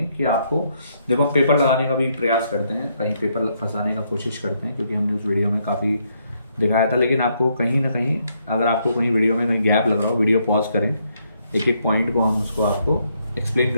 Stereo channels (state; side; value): inverted; both; correlation -0.74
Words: कि आपको देखो, हम पेपर लगाने का भी प्रयास करते हैं, कहीं पेपर फंसाने का कोशिश करते हैं, क्योंकि हमने उस वीडियो में काफ़ी दिखाया था। लेकिन आपको कहीं ना कहीं, अगर आपको कहीं वीडियो में कहीं गैप लग रहा हो, वीडियो पॉज करें, एक एक पॉइंट को हम उसको आपको एक्सप्लेन